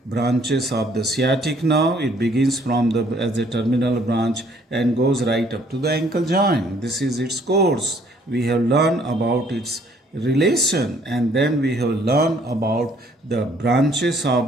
branches of the sciatic nerve. It begins from the as a terminal branch and goes right up to the ankle joint. This is its course. We have learned about its relation, and then we have learned about the branches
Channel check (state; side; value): normal; both; correlation 0.62